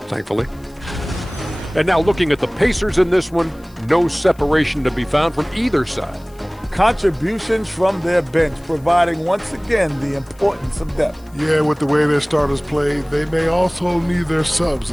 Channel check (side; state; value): left; noise; hiss, 29 dB below the sound